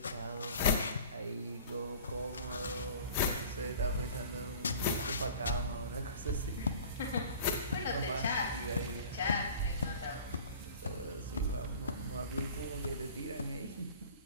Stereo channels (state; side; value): inverted; both; correlation -0.43